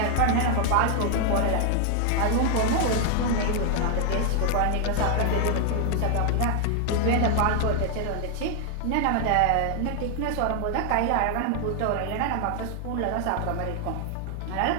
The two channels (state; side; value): different; both; correlation 0.00